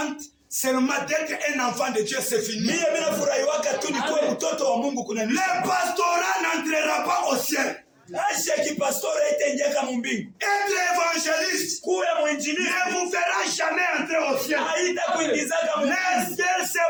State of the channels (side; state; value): both; identical; correlation 1.00